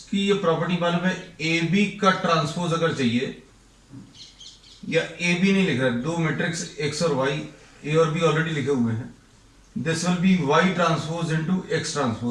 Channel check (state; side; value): identical; both; correlation 1.00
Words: की ये प्रॉपर्टी मालूम है, ए बी का ट्रांसपोज अगर चाहिए, या ए बी नहीं लिख रहा है, दो मैट्रिक्स x और y, a और b ऑलरेडी लिखे हुए हैं, this will B y transpose into x